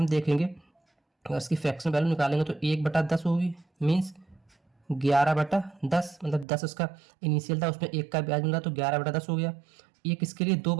देखेंगे, अगर इसकी फ्रैक्शन वैल्यू निकालेंगे तो 1/10 होगी, मीन्स 11/10। मतलब 10 उसका इनिशियल था, उसमें 1 का ब्याज मिला तो 11/10 हो गया। ये किसके लिए, 2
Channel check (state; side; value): drops out; left; at 6.5 s